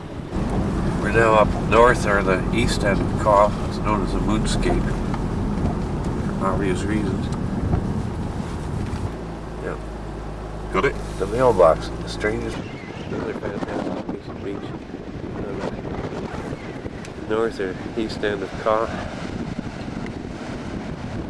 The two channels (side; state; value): both; identical; correlation 1.00